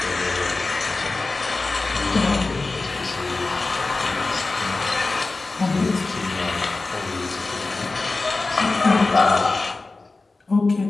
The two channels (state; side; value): quieter; right; 3.5 dB